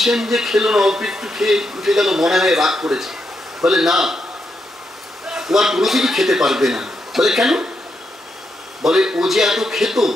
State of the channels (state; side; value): normal; both; correlation 0.82